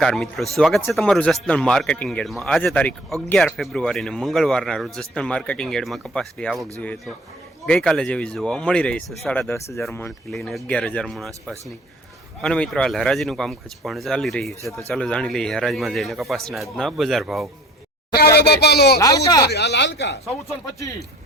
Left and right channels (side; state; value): both; normal; correlation 0.50